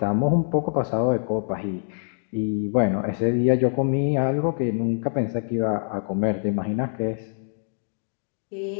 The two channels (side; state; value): right; silent; digital silence